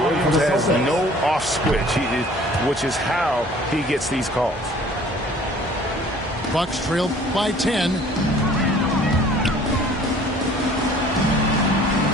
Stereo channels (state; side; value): normal; both; correlation 0.52